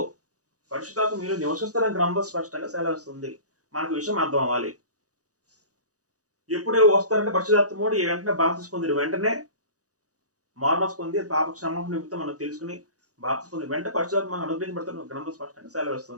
పరిశుద్ధాత్మ మీరు నివసిస్తారని గ్రంథం స్పష్టంగా సెలవిస్తుంది. మనకు విషయం అర్థం అవ్వాలి. ఎప్పుడు వస్తారంటే పరిశుద్ధాత్ముడు వెంటనే బాప్తిసం పొందిన వెంటనే మార్మల్స్ పొంది పాప క్షమాపణ నిమిత్తం మనం తెలుసుకుని బాప్తిసం పొంది వెంటనే పరిశుద్ధాత్మ మనకు అనుగ్రహించబడుతున్న గ్రంథం స్పష్టంగా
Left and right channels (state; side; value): late; left; 0.67 ms